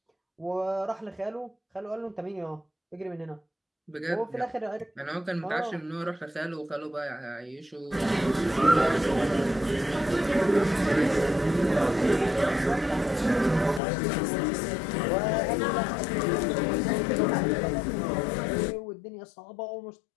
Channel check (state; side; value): drops out; right; at 13.8 s